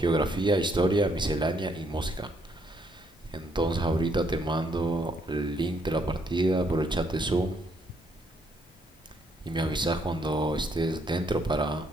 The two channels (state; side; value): normal; both; correlation 0.71